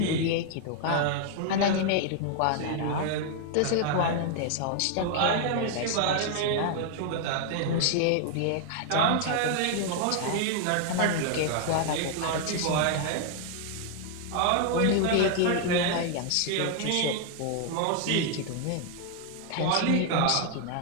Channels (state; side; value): different; both; correlation 0.00